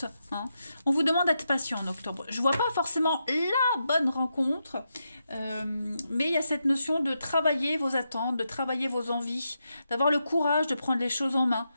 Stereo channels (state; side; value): inverted; both; correlation -0.85